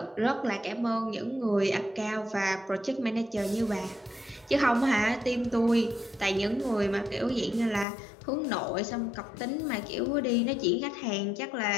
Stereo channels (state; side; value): drops out; right; at 7.9 s